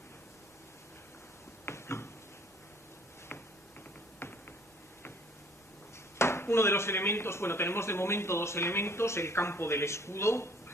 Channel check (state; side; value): normal; both; correlation 0.56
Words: Uno de los elementos, tenemos de momento 2 elementos, el campo del escudo